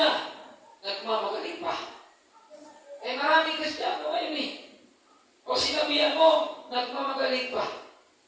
nagmamagaling pa. Maraming Kristiyano ngayon O sinabihan mo, nagmamagaling pa.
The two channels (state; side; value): identical; both; correlation 1.00